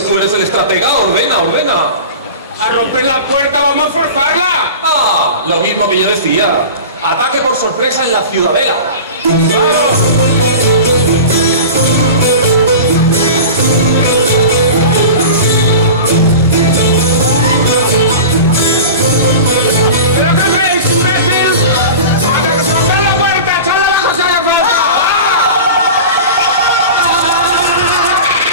tú eres el estratega, ordena. ¡A romper la puerta, vamos a forzarla! Lo mismo que yo decía. Ataque por sorpresa en la ciudadela. ¡Vamos!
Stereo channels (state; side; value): inverted; both; correlation -0.33